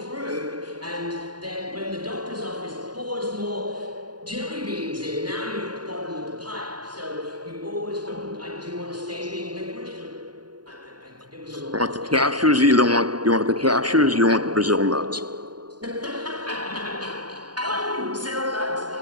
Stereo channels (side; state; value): left; late; 0.70 ms